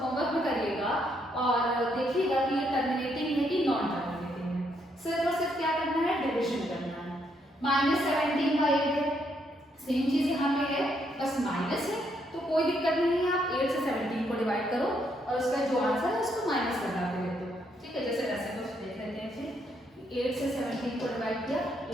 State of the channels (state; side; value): normal; both; correlation 0.74